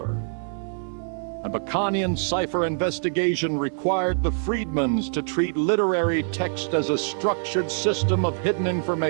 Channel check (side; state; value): left; silent; digital silence